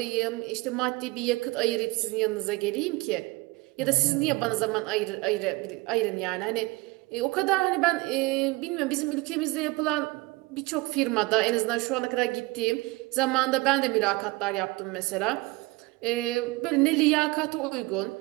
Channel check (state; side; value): quieter; left; 23.2 dB